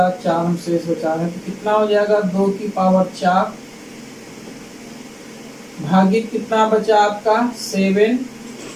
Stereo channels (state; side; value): identical; both; correlation 1.00